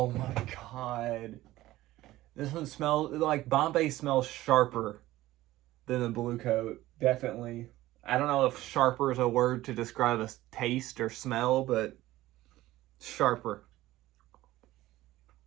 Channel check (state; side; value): quieter; left; 16.3 dB